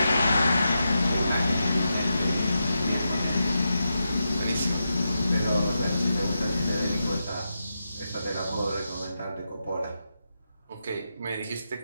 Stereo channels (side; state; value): both; inverted; correlation -0.87